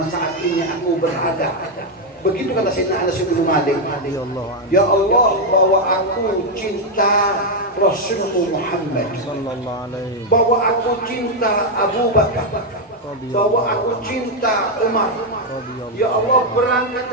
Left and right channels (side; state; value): both; normal; correlation 0.02